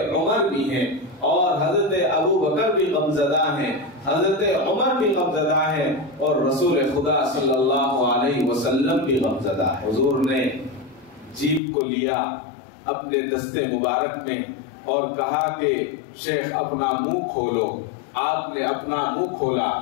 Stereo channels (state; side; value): drops out; right; at 11.6 s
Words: عمر بھی ہیں، اور حضرت ابو بکر بھی غمزدہ ہیں، حضرت عمر بھی غمزدہ ہیں، اور رسول خدا صلی اللہ علیہ وسلم بھی غمزدہ ہے. حضور نے جیب کو لیا اپنے دستے مبارک میں اور کہا کہ شیخ اپنا منہ کھولو. آپ نے اپنا منہ کھولا،